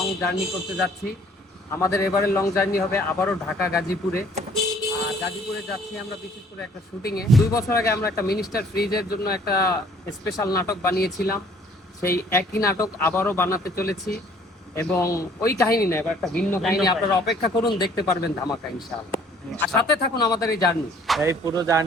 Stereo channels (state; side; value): normal; both; correlation 0.57